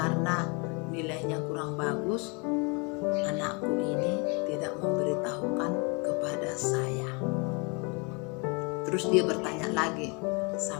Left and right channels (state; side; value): quieter; right; 32.0 dB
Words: nilainya kurang bagus, anakku ini tidak memberitahukan kepada saya. Terus dia bertanya lagi